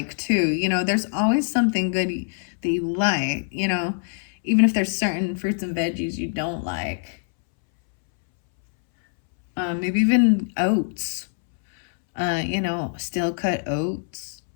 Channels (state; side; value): silent; right; 63 dB below the other